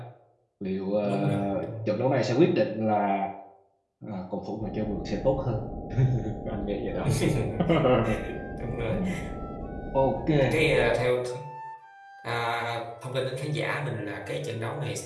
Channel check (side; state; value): both; identical; correlation 1.00